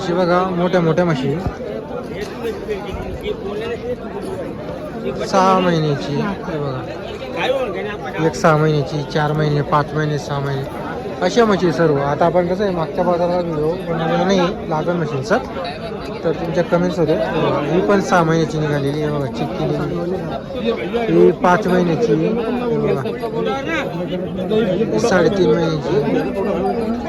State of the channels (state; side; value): identical; both; correlation 1.00